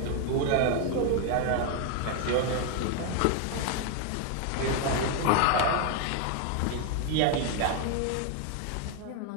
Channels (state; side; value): different; both; correlation 0.01